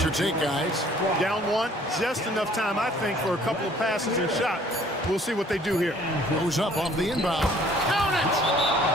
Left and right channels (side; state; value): both; normal; correlation 0.56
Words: your take, guys? Down 1, just enough time, I think, for a couple of passes and shots. We'll see what they do here. Goes up off the inbound. Count